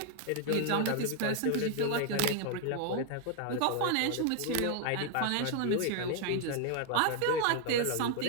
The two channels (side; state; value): both; different; correlation 0.00